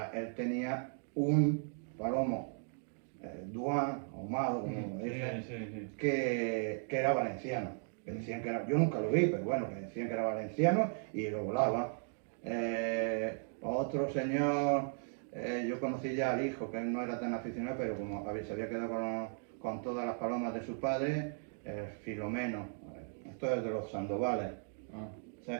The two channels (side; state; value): left; silent; 53 dB below the other